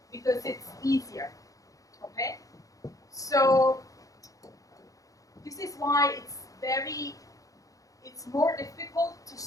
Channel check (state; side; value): late; right; 0.17 ms